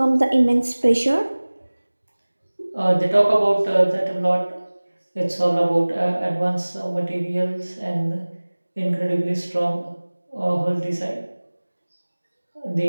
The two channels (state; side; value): inverted; both; correlation -1.00